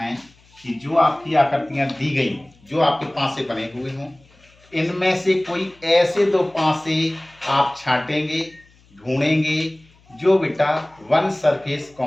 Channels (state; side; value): noise; left; hum, 30 dB below the sound